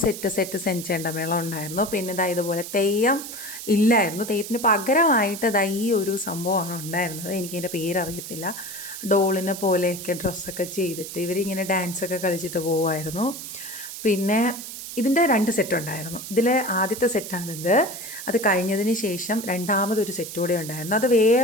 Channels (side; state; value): right; noise; hiss, 10 dB below the sound